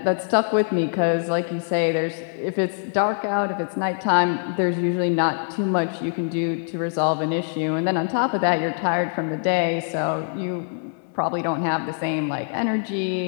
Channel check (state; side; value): silent; right; 63 dB below the other